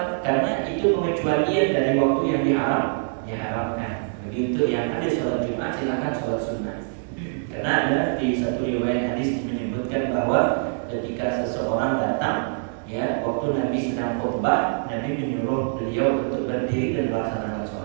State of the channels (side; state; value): left; silent; digital silence